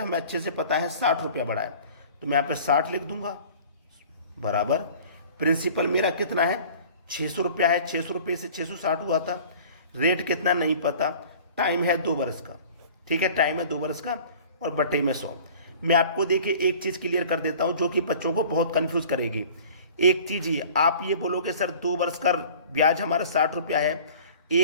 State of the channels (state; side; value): inverted; both; correlation -0.46